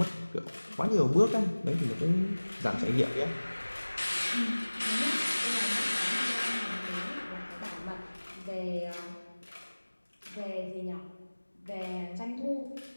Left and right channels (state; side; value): inverted; both; correlation -1.00